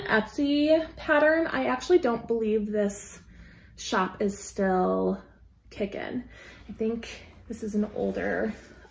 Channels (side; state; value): both; identical; correlation 1.00